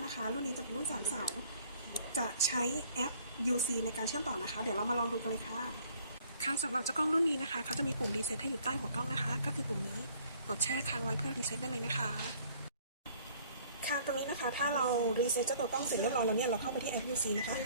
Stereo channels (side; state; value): both; inverted; correlation -0.57